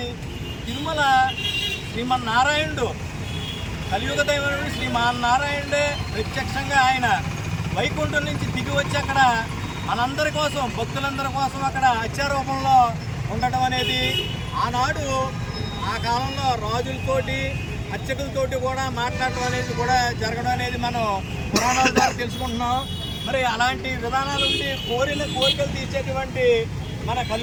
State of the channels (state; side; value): identical; both; correlation 1.00